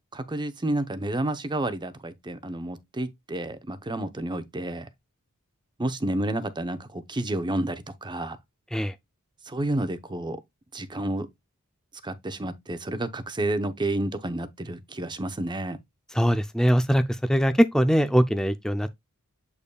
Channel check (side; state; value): both; normal; correlation 0.88